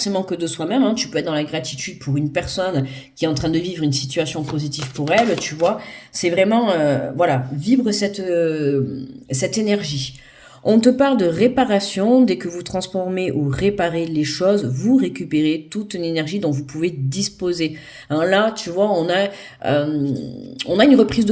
que de soi-même, hein. Tu peux être dans la gratitude pour une personne qui est en train de vivre une situation positive pour elle, tu vois. C'est vraiment, voilà, vibre cette énergie. On te parle de réparation. Dès que vous transformez ou réparez les choses, vous récupérez toute une énergie dont vous pouvez disposer. Hein, là, tu vois, on a une reprise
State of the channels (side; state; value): both; identical; correlation 1.00